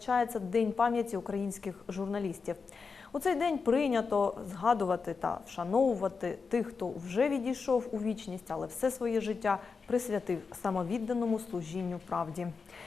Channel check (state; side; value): quieter; right; 5.0 dB